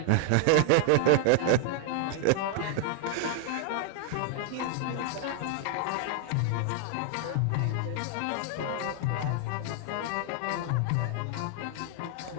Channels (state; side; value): different; both; correlation 0.00